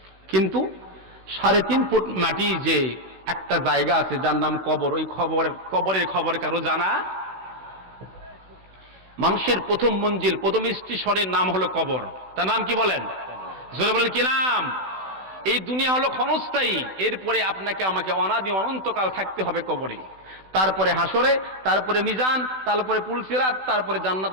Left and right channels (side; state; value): left; late; 16 ms